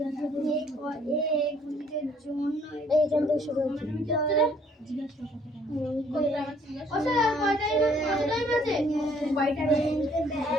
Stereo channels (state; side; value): normal; both; correlation 0.62